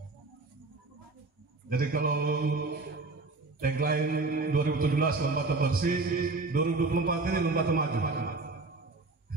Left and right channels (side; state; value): left; quieter; 3.5 dB